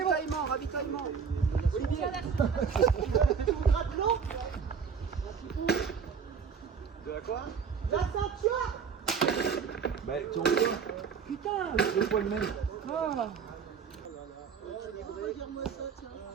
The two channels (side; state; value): left; quieter; 6.2 dB